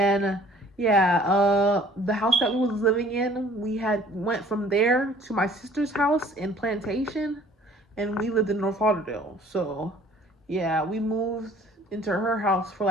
yeah, the house that we was living in, we had went from there to my sister's house in Plantation, and we lived in North Lauderdale. So yeah, we moved into her house for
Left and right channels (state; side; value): normal; both; correlation 0.53